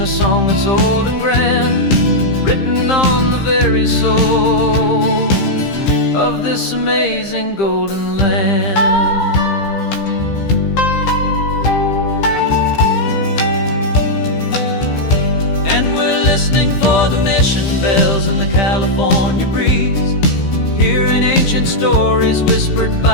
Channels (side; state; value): right; late; 15 ms